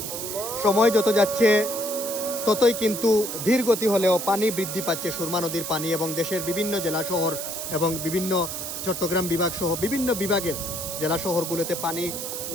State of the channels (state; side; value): noise; right; hiss, 6 dB below the sound